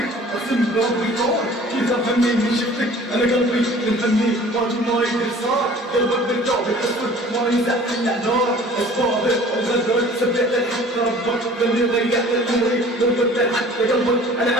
اقسم بربي طار كيف افهمني من شفتك انا قلبي منهني واجب ما يدري صار قلبك بالجوب الاسود ما ينزع الا نار اسبابك وغدرك سبيت الحق ربك لاني ضيعت عمري ضربت حتى قلبك انا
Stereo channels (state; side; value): normal; both; correlation 0.48